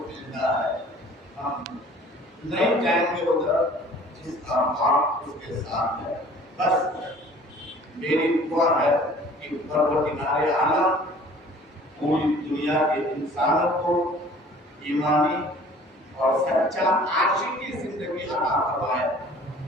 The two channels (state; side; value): normal; both; correlation 0.50